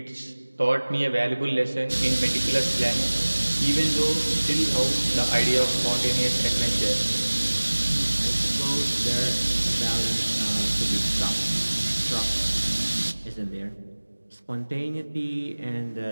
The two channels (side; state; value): both; inverted; correlation -1.00